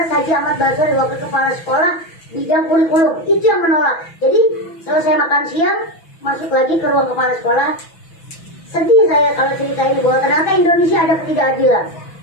Haji Ahmad Basori, wakil kepala sekolah bidang kurikulum. Itu yang menolak. Jadi selesai makan siang, masuk lagi ke ruang kepala sekolah. Sedih saya kalau cerita ini bahwa ternyata Indonesia ada ketidakadilan.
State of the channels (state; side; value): late; right; 6.0 ms